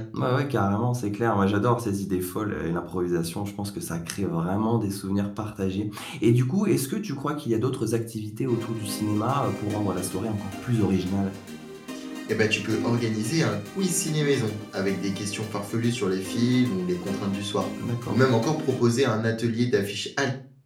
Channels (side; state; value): both; identical; correlation 1.00